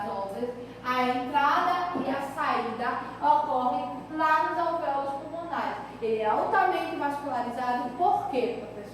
a entrada e a saída ocorre lá nos alvéolos pulmonares. Ele é altamente vascularizado. Por quê,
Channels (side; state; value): both; identical; correlation 1.00